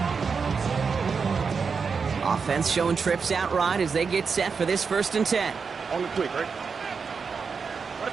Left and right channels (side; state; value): left; quieter; 5.5 dB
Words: line. Offense showing trips out right as they get set for this first and 10. On the quick, right?